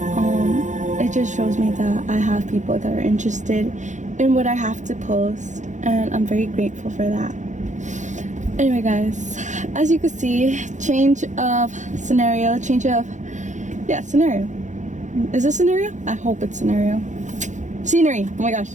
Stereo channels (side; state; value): left; late; 0.35 ms